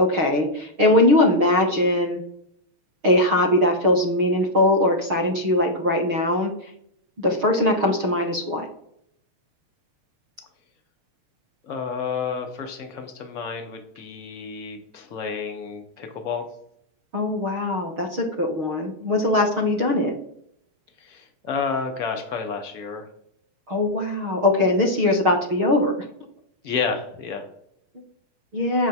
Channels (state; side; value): late; left; 6.5 ms